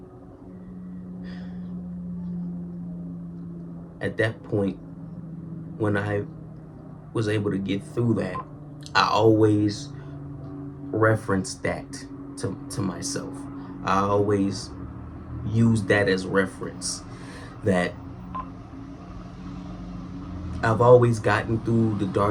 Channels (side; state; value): both; identical; correlation 1.00